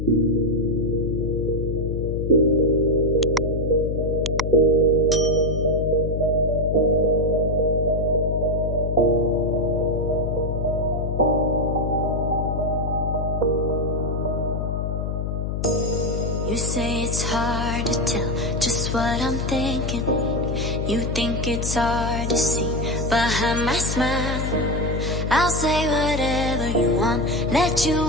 say it's hard to tell just what I'm thinking. You think it's hard to see behind my smile. I'll say whatever you want, let you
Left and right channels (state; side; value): noise; left; hum, 2 dB below the sound